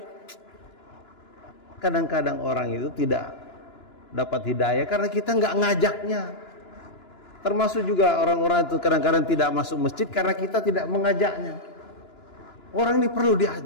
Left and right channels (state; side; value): late; right; 2.9 ms